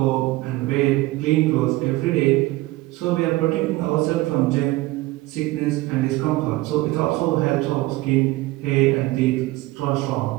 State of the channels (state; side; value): quieter; left; 19.1 dB